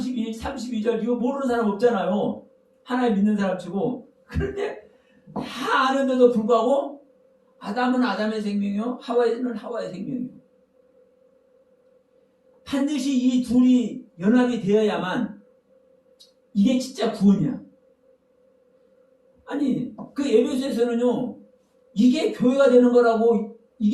이거 모르는 사람 없잖아요. 하나님 믿는 사람 치고. 그런데 다 아는데도 불구하고 아담은 아담의 생명이요, 하와는 하와의 생명이요. 반드시 이 둘이 연합이 되어야만 이게 진짜 구원이야. 아니, 그 에베소에서는요, 이게 교회가 되는 거라고,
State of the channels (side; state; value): both; identical; correlation 1.00